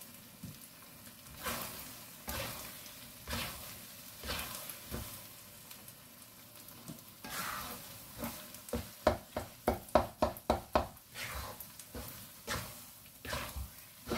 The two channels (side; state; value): both; identical; correlation 1.00